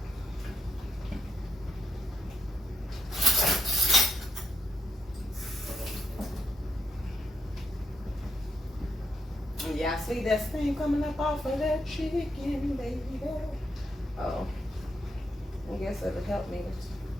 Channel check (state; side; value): normal; both; correlation 0.80